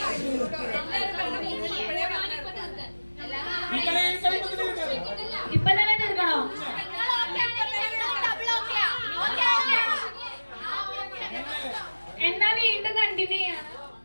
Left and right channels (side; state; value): both; inverted; correlation -1.00